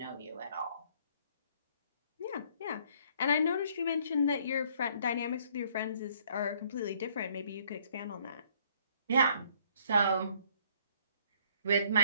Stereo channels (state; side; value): inverted; both; correlation -0.63